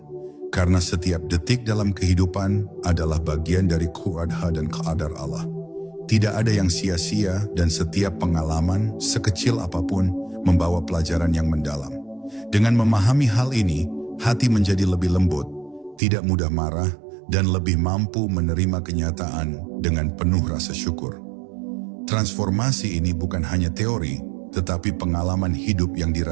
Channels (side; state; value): left; drops out; at 16.0 s